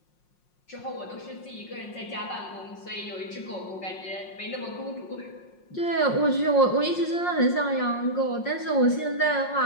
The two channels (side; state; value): right; late; 5.6 ms